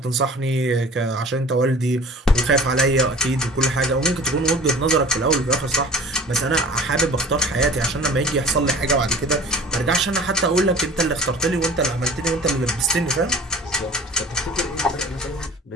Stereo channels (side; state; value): both; normal; correlation 0.44